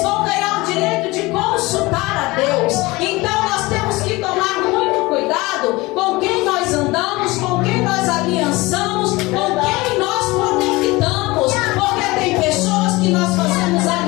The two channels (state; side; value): quieter; right; 21.8 dB